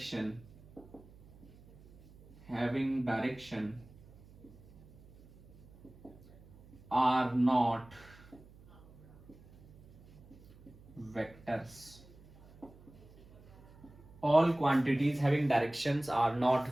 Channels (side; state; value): right; noise; hum, 23 dB below the sound